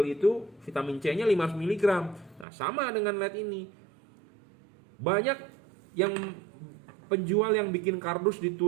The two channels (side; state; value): left; drops out; at 2.5 s